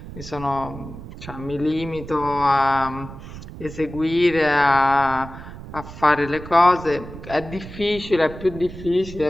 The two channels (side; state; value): right; noise; rumble, 13 dB below the sound